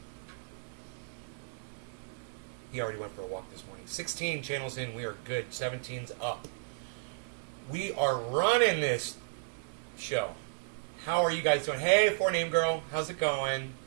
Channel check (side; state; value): left; silent; digital silence